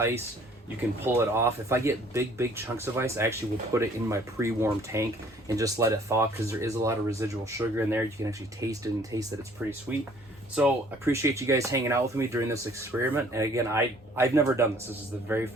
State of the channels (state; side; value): normal; both; correlation 0.57